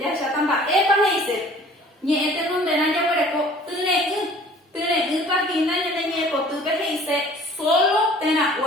jahecháta mba'épa he'ise ñe'ẽ tenondéna jaguereko tyre'ỹ ñane ñe'ẽpotýpe he'ise solo térã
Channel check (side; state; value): both; normal; correlation 0.50